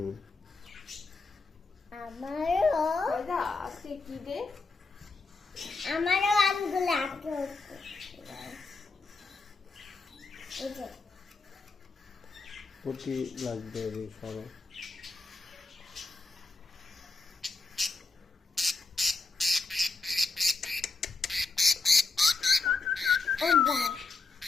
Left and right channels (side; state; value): right; quieter; 3.9 dB